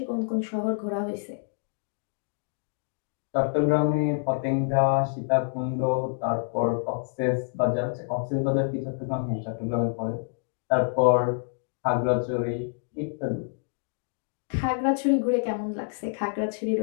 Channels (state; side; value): silent; right; digital silence